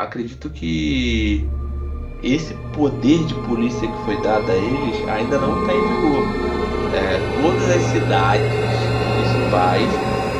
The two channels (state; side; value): identical; both; correlation 1.00